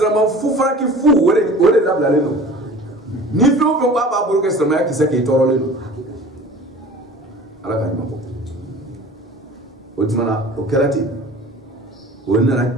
fu fara k'i fu o de labilalen don ni fɛn o fɛn k'a b'a bolo kɛ silamɛya kisɛ k'i tɔɔrɔlen don ala ka ɲuman bɔ o tuma na o kɛra ten o nana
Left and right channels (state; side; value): normal; both; correlation 0.42